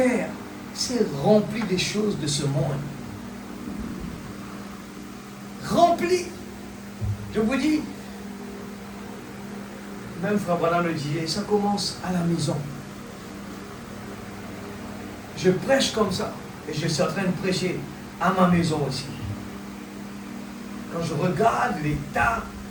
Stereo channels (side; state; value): both; identical; correlation 1.00